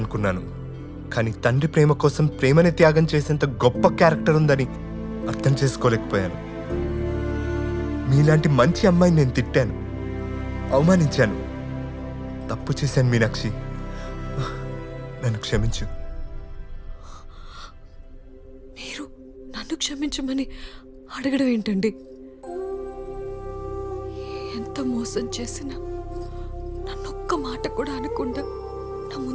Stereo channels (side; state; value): both; identical; correlation 1.00